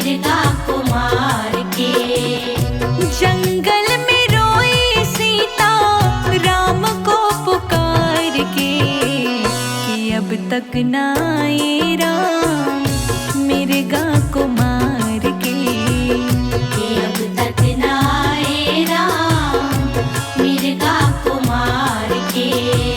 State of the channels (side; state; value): both; identical; correlation 1.00